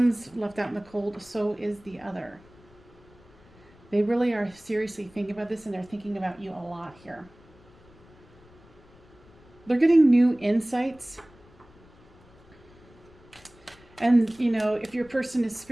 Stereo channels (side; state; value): left; noise; rumble, 26 dB below the sound